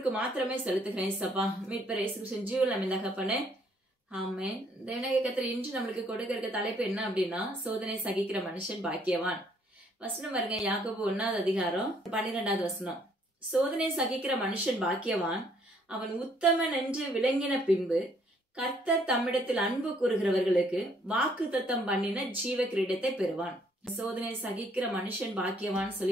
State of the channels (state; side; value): normal; both; correlation 0.65